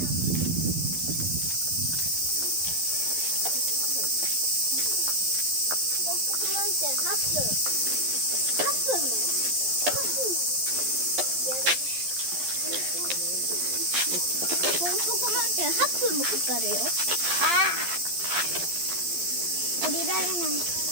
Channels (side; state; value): left; late; 11 ms